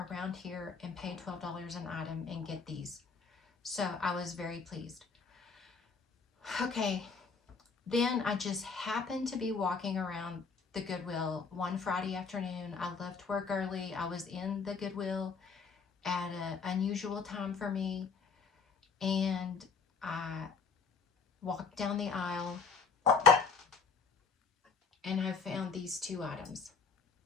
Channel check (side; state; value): right; quieter; 5.1 dB